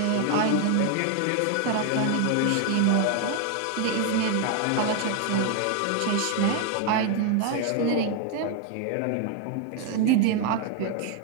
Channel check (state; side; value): different; both; correlation 0.01